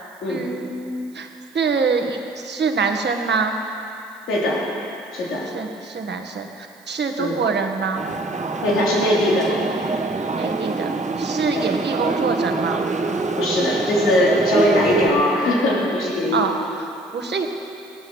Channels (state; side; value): noise; right; hiss, 29 dB below the sound